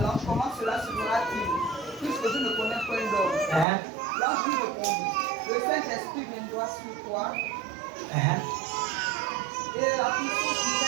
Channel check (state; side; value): drops out; left; at 3.7 s